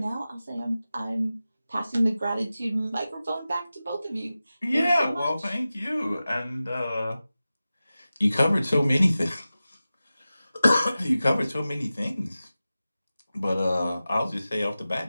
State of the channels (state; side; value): inverted; both; correlation -0.95